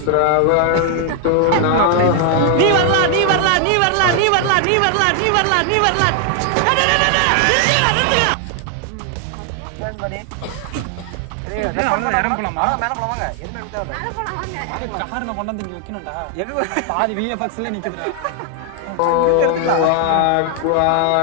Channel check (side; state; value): both; different; correlation 0.00